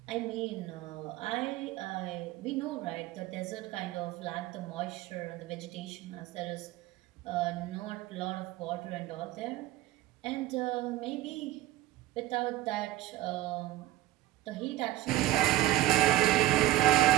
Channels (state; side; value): quieter; left; 15.2 dB